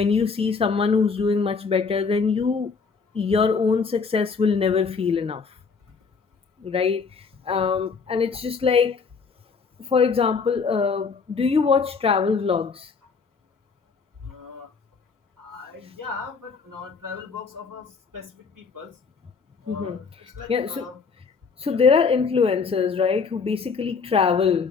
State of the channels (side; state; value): right; quieter; 5.2 dB